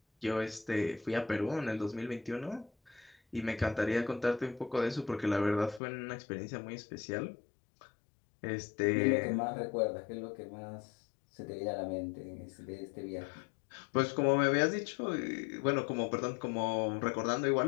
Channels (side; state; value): right; drops out; at 5.8 s